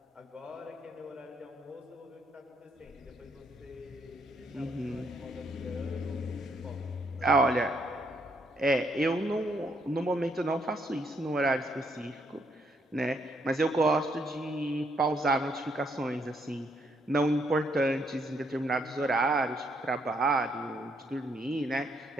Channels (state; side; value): normal; both; correlation 0.73